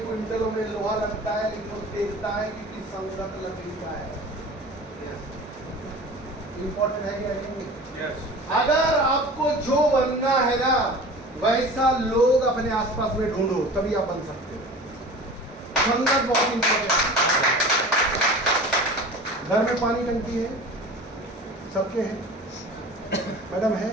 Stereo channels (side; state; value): both; normal; correlation 0.39